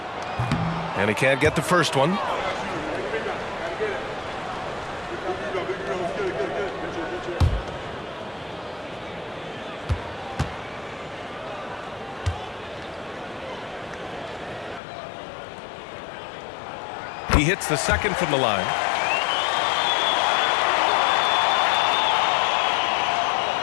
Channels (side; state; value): right; drops out; at 14.8 s